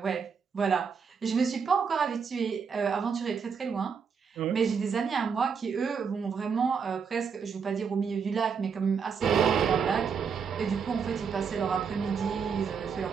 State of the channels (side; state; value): left; quieter; 6.2 dB